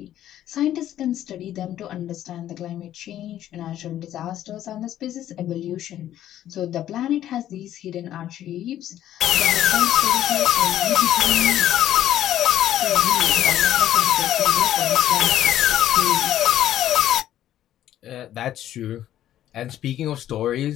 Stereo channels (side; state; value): right; quieter; 12.1 dB